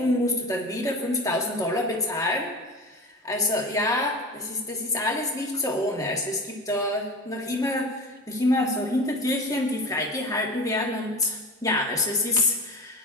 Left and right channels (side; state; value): both; normal; correlation 0.31